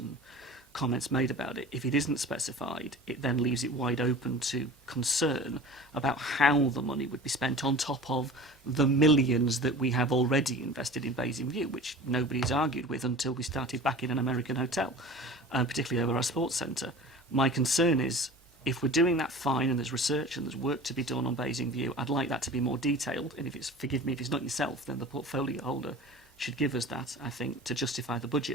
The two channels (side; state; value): both; normal; correlation 0.39